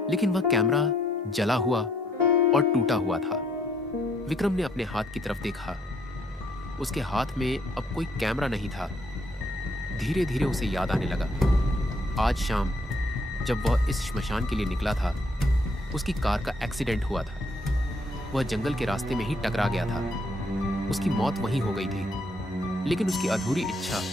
लेकिन वह कैमरा जला हुआ और टूटा हुआ था। विक्रम ने अपने हाथ की तरफ देखा। उसके हाथ में अब कोई कैमरा नहीं था। धीरे धीरे उसे याद आने लगा। आज शाम जब वह इस श्मशान के लिए निकला था, उसकी कार का एक्सीडेंट हुआ था। वह जंगल के रास्ते में ही टकरा गया था। उसकी मौत वहीं हो गई थी, लेकिन उसकी अधूरी इच्छा,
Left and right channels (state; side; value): normal; both; correlation 0.69